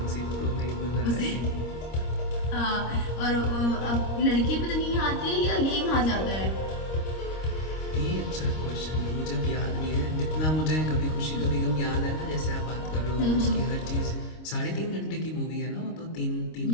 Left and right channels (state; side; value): late; right; 26 ms